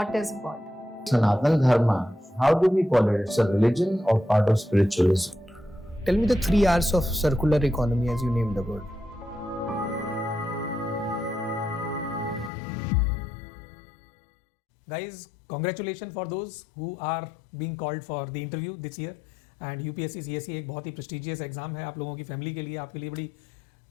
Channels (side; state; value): right; drops out; at 12.5 s